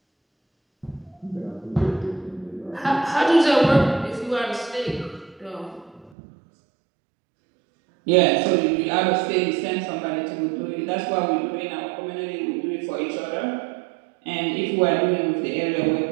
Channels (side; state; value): left; drops out; at 6.1 s